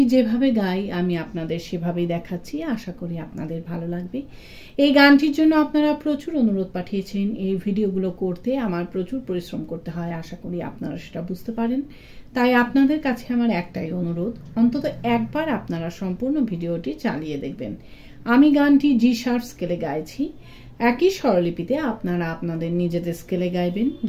যেভাবে গাই আমি আপনাদের সেভাবেই দেখাচ্ছি। আশা করি আপনাদের ভালো লাগবে। এই গানটির জন্য আপনারা প্রচুর অনুরোধ পাঠিয়েছেন। এই ভিডিওগুলো করতে আমার প্রচুর পরিশ্রম করতে হয়, আশা করি আপনারা সেটা বুঝতে পারেন। তাই আপনাদের কাছে আমার একটাই অনুরোধ, অন্তত একবার আপনারা সম্পূর্ণ ভিডিওটি চালিয়ে দেখবেন। আমি গানটি জি শার্প স্কেলে গাইছি। একই স্বরলিপিতে আপনারা আপনাদের নিজেদের স্কেলে গাইবেন।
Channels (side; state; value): both; identical; correlation 1.00